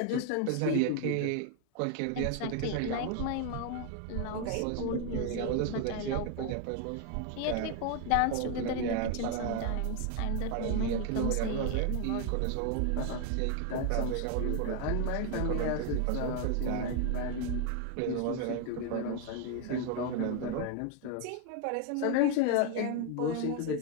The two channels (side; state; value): both; different; correlation 0.01